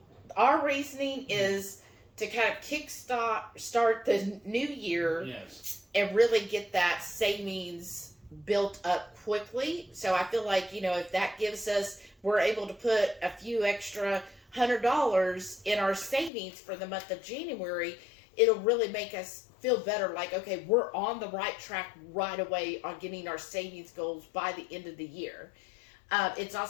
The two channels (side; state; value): right; drops out; at 16.3 s